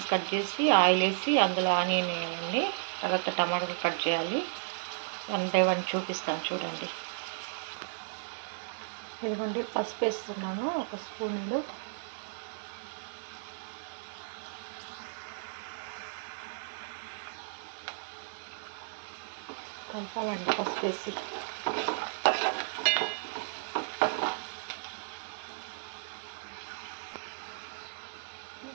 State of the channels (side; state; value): left; silent; digital silence